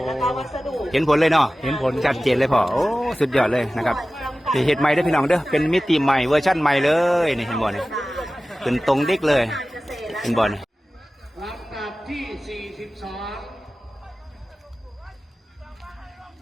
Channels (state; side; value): normal; both; correlation 0.96